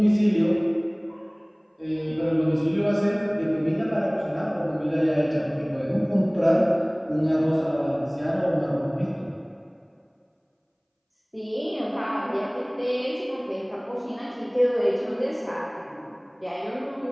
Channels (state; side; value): identical; both; correlation 1.00